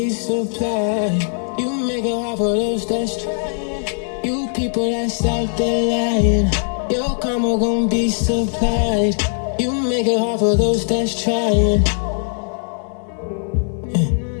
supplied. You make it hard for those that's trying. You people that's out there lying, your karma gon' be supplied. You make it hard for those that's trying.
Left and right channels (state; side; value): silent; right; digital silence